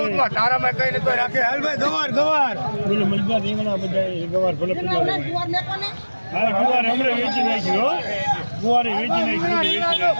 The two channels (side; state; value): both; inverted; correlation -1.00